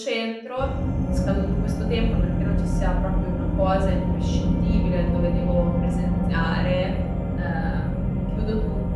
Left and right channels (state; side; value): identical; both; correlation 1.00